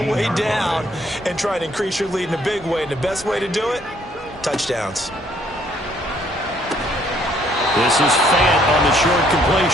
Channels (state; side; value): normal; both; correlation 0.65